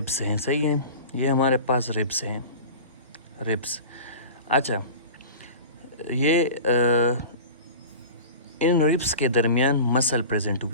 हैं, सही है, ये हमारे पास रिब्स हैं, रिब्स। अच्छा, ये इन रिब्स के दरमियान मसल प्रेजेंट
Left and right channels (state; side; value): inverted; both; correlation -0.36